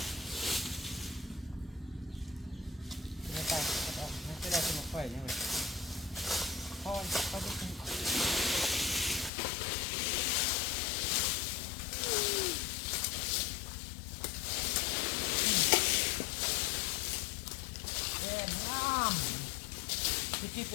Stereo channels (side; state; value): right; drops out; at 9.3 s